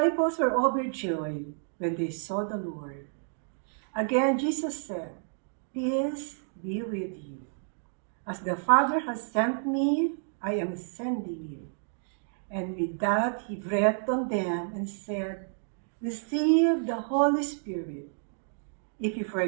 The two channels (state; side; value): silent; left; digital silence